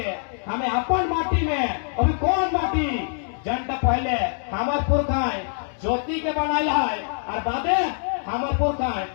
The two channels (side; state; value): right; silent; digital silence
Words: हमें अपन माटी में अभी कौन माटी जनता पहले हमार पुरखाएं ज्योति के बनाया है और बादे हमार पुरखाएं